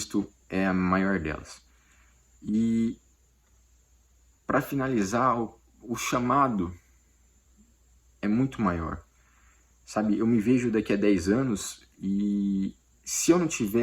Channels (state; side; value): identical; both; correlation 1.00